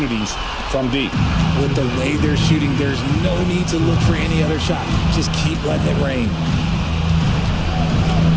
from deep. With the way they're shooting, there's no need to look for any other shot. Just keep letting it rain.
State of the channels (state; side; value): identical; both; correlation 1.00